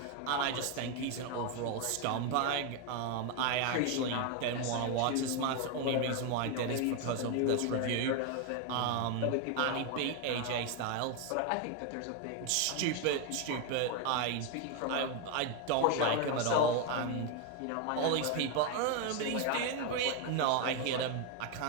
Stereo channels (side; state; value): both; different; correlation 0.01